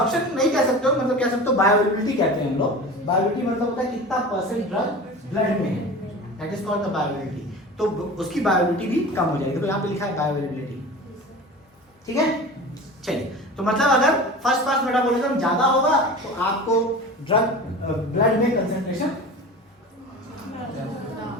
नहीं कह सकते हो, मतलब कह सकते हो बायोअवेलेबिलिटी कहते हैं हम लोग। बायोअवेलेबिलिटी मतलब होता है कितना परसेंट ड्रग ब्लड में है, that is called the bioavailability. तो उसकी बायोअवेलेबिलिटी भी कम हो जाएगी, तो यहाँ पे लिखा है बायोअवेलेबिलिटी। ठीक है, चलिए, तो मतलब अगर फर्स्ट पास मेटाबॉलिज्म ज्यादा होगा तो आपको ड्रग ब्लड में कंसंट्रेशन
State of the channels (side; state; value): both; normal; correlation 0.35